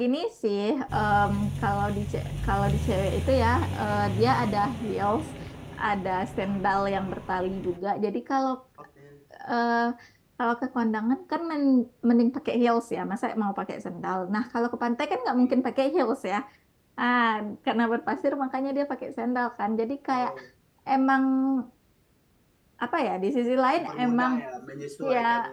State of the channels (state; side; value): identical; both; correlation 1.00